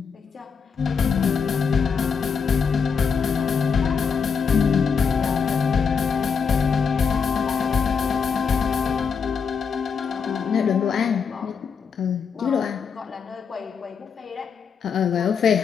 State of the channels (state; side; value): quieter; right; 6.1 dB